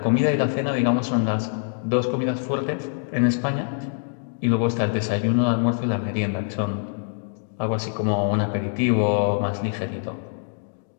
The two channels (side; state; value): right; silent; digital silence